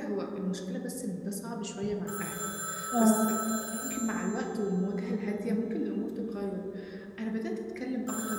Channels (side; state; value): both; identical; correlation 1.00